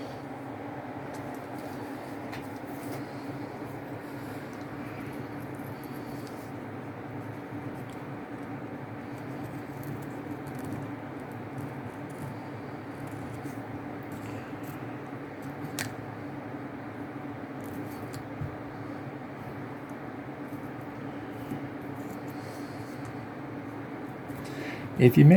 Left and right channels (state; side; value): identical; both; correlation 1.00